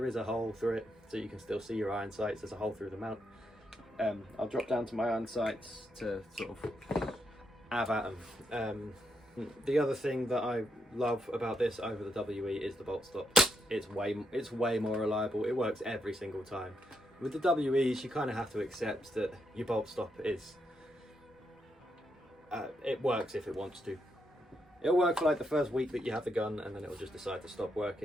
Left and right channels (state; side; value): normal; both; correlation 0.80